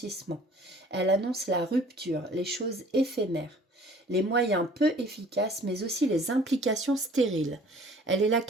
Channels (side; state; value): both; normal; correlation 0.52